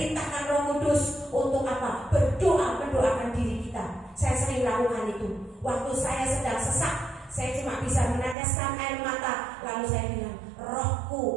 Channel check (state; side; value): drops out; left; at 8.3 s